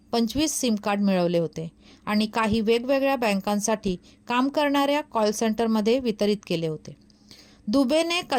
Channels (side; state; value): both; identical; correlation 1.00